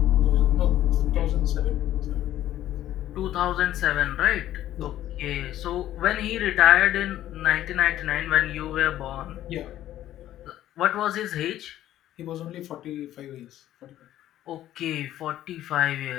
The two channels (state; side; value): quieter; right; 13.0 dB